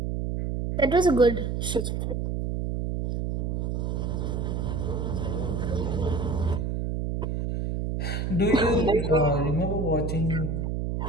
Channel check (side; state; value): right; noise; hum, 1 dB below the sound